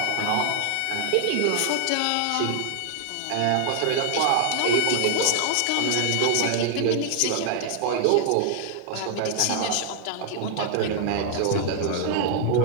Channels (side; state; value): both; different; correlation 0.00